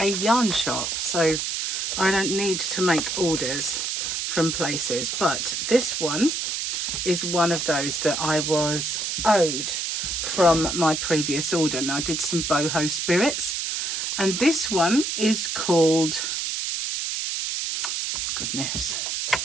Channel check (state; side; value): noise; right; hiss, 2 dB below the sound